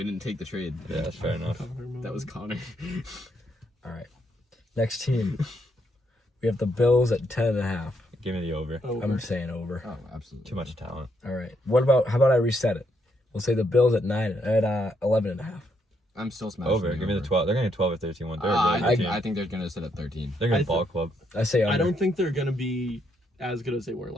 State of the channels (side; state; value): both; normal; correlation 0.76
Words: didn't take the trade. Yeah, that's fair enough. That was Connor. All right. Next team. We have the Bills at 10.5. Give me the over. I'm saying over. Oh, absolutely. Too much talent. All right. How about I reset it? We'll say the Bills at 11.5. I'm still smashing. Over. Give me the 12. They're going to 12 or 13 one. They're a really good team. I think they're going to sit at 13. They're going to ball club. I say under. I don't think they're gonna be as good as they were